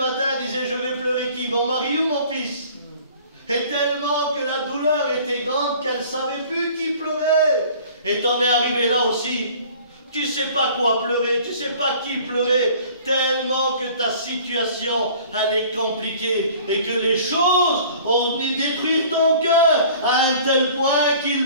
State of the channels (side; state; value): both; inverted; correlation -0.49